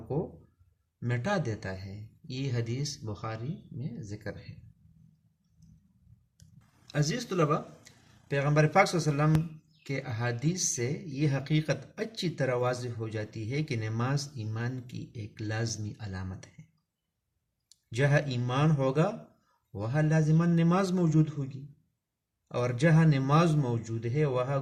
کو مٹا دیتا ہے۔ یہ حدیث بخاری میں ذکر ہے۔ عزیز طلباء، پیغمبر پاک صلی اللہ علیہ وسلم کے احادیث سے یہ حقیقت اچھی طرح واضح ہو جاتی ہے کہ نماز ایمان کی ایک لازمی علامت ہے۔ جہاں ایمان ہوگا وہاں لازماً نماز موجود ہوگی، اور جہاں نماز موجود ہے وہاں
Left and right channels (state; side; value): identical; both; correlation 1.00